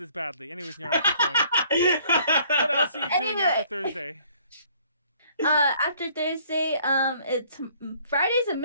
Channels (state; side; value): inverted; both; correlation -0.60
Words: badly. Anyways, Nyaru, keep going. What else are you doing after Thursday? After Thursday, it's Friday's a